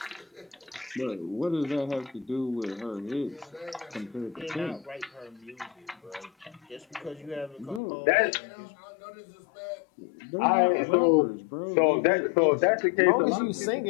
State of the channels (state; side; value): drops out; right; at 7.8 s